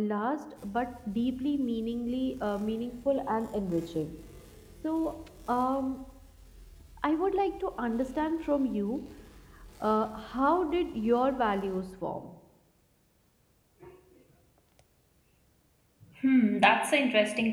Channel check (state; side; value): identical; both; correlation 1.00